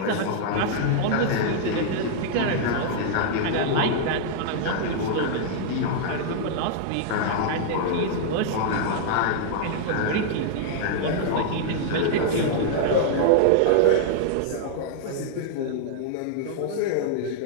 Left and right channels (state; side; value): different; both; correlation -0.01